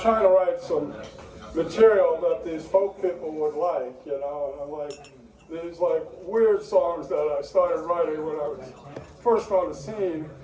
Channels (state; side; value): identical; both; correlation 1.00